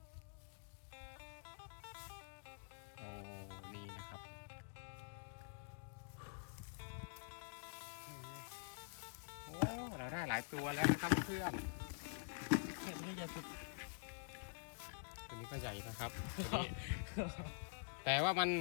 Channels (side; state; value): right; silent; digital silence